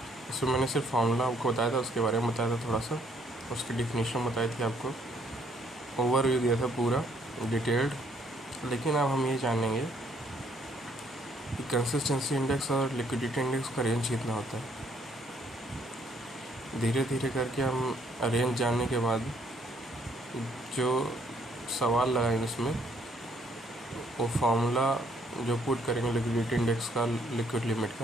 इसमें मैंने सिर्फ फार्मूला आपको बताया था, उसके बारे में बताया था थोड़ा सा, उसकी डिफिनीशन बताई थी आपको, ओवरव्यू दिया था पूरा डिटेल्ड। लेकिन अब हम ये जानेंगे कि कंसिस्टेंसी इंडेक्स और लिक्विडिटी इंडेक्स का रेंज कितना होता है। धीरे धीरे करके हम रेंज जानने के बाद जो सवाल लगाएंगे उसमें वो फार्मूला जो पुट करेंगे लिक्विडिटी इंडेक्स का, लिक्विड लिमिट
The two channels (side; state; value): both; normal; correlation 0.67